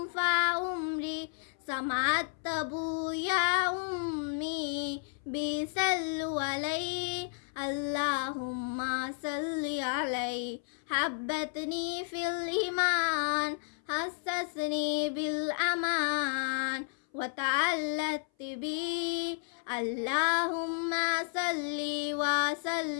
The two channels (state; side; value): silent; right; 56 dB below the other